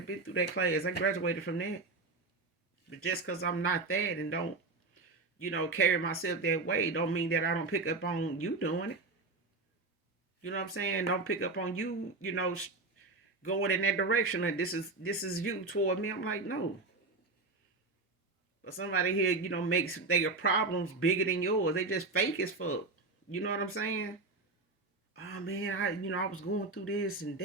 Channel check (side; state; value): left; quieter; 3.6 dB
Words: through that class. I graduated from that. But just because I'm not that and don't, carry myself that way, don't mean that I don't pick up on you doing it. You know what I'm saying? Don't pick up on you, going in that direction, and this is you toward me. I'm like, no. But somebody here, makes their problems bigger than yours. They just fake as fuck. You know what I'm saying? Oh man, I was going through this and